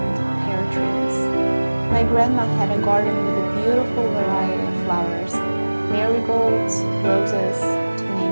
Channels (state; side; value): inverted; both; correlation -1.00